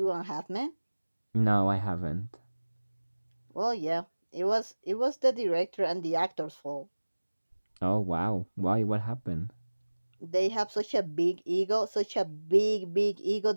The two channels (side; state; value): both; inverted; correlation -1.00